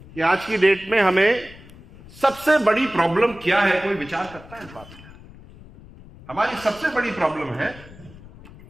कि आज की डेट में हमें सबसे बड़ी प्रॉब्लम क्या है, कोई विचार करता है इस बात में? हमारी सबसे बड़ी प्रॉब्लम है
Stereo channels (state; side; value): noise; left; rumble, 20 dB below the sound